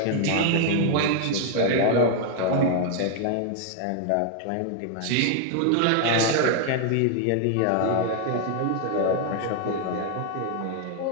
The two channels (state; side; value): different; both; correlation 0.00